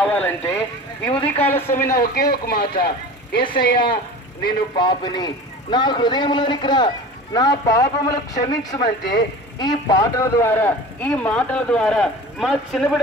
ఈ ఉదయకాల సమయన ఒకే ఒక మాట, యేసయ్యా నేను పాపిని, నా హృదయంలోనికి రా, నా పాపములు క్షమించమంటే ఈ పాటల ద్వారా, ఈ మాటల ద్వారా మా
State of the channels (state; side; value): normal; both; correlation 0.37